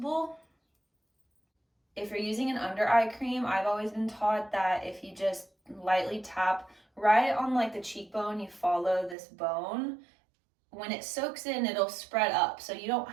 If you're using an under eye cream, I've always been taught that if you just lightly tap right on like the cheekbone, you follow this bone, when it soaks in, it'll spread up. So you don't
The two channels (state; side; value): drops out; left; at 9.2 s